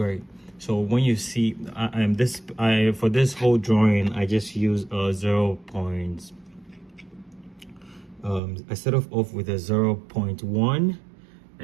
So when you see for this whole drawing I just use 0 points. I start off with a 0.1,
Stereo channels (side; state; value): left; drops out; at 8.4 s